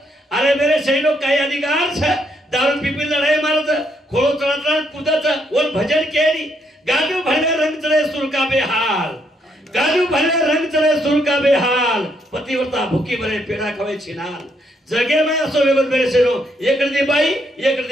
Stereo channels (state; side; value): normal; both; correlation 0.74